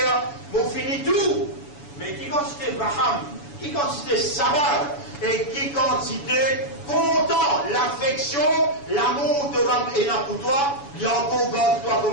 vous finit tout. Mais qui quantité Abraham, qui quantité Sabbat, et qui quantité content, l'affection, l'amour de Rab et pour toi, il y a encore garde toi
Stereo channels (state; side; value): late; right; 7.1 ms